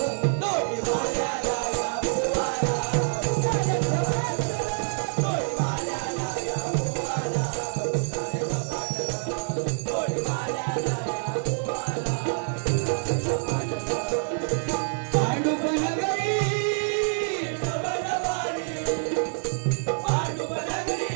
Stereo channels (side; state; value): left; silent; digital silence